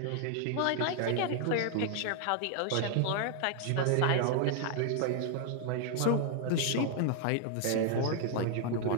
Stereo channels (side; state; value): both; different; correlation 0.00